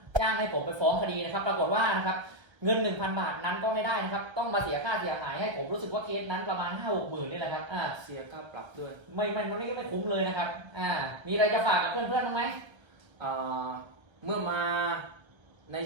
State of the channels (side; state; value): left; late; 1.3 ms